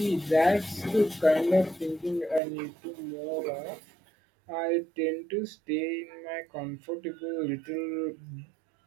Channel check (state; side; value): drops out; left; at 2.4 s